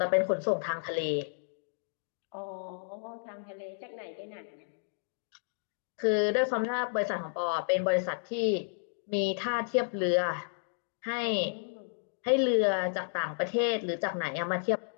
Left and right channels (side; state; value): right; silent; digital silence